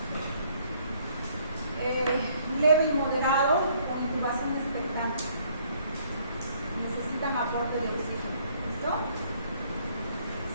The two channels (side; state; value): both; inverted; correlation -0.64